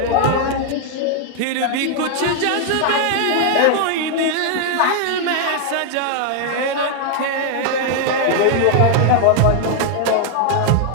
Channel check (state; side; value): different; both; correlation 0.00